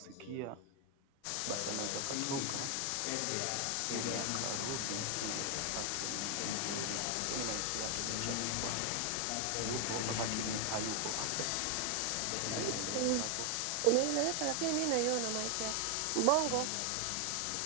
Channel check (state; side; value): different; both; correlation 0.00